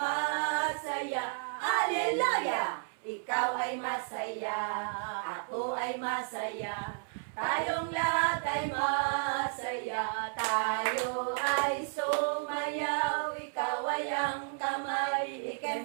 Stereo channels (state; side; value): silent; left; 56 dB below the other